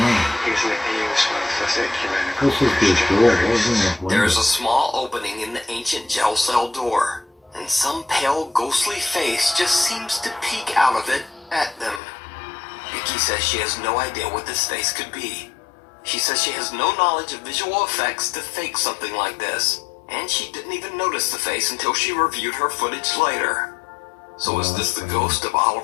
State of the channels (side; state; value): right; drops out; at 12.0 s